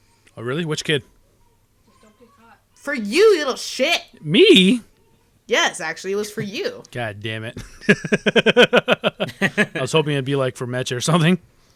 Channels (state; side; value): identical; both; correlation 1.00